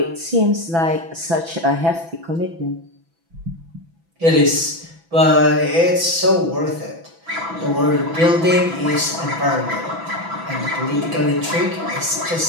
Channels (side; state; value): left; late; 6.0 ms